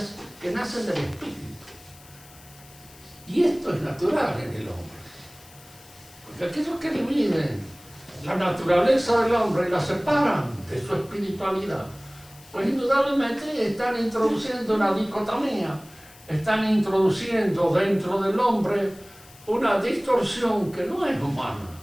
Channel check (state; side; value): noise; left; hiss, 23 dB below the sound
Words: que nacen del espíritu. Y esto es natural en el hombre. Porque aquellos que dividen la naturaleza del hombre y la separan de su espiritualidad, pues indudablemente están introduciendo una dicotomía, están introduciendo dentro del hombre una distorsión que no es humana.